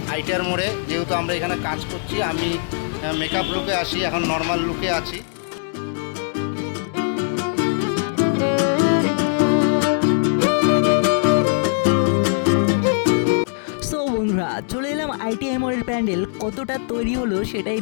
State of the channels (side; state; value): right; silent; digital silence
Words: আইটিআর মোড়ে, যেহেতু আমরা এখানে কাজ করছি। আমি মেকআপ লুকে আসি, এখন নর্মাল লুকে আছি। বন্ধুরা চলে এলাম আইটিআই মোড়ের প্যান্ডেল কতটা তৈরি হলো সেটাই